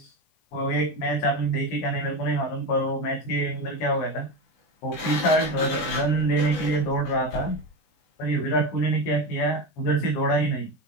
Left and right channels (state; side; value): late; right; 19 ms